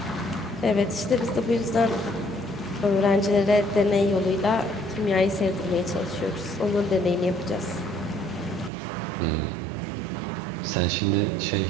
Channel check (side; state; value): left; drops out; at 8.7 s